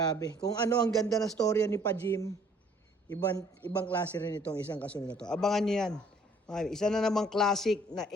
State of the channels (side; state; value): both; normal; correlation 0.59